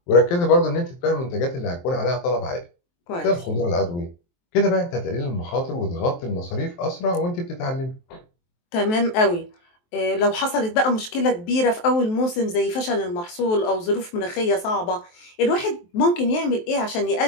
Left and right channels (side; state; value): right; late; 23 ms